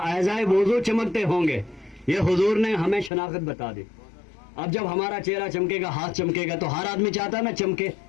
ऐज़ाए वुज़ू चमकते होंगे। ये हुजूर ने हमें शनाख्त बता दी। अब जब हमारा चेहरा चमकेगा, हाथ चमकेगा, तो हर आदमी चाहता है ना चमके।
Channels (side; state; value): right; drops out; at 3.1 s